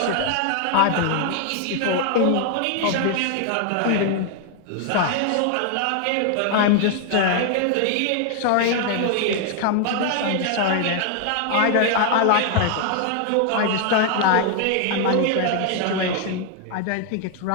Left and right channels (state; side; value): different; both; correlation 0.00